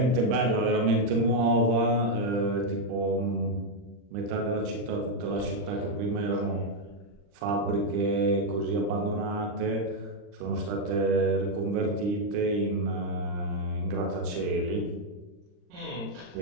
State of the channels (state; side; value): late; left; 39 ms